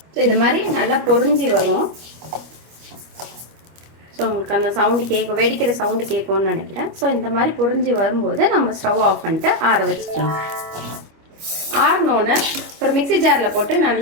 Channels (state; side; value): late; left; 25 ms